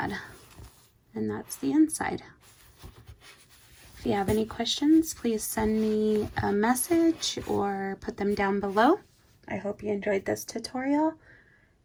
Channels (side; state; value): both; identical; correlation 1.00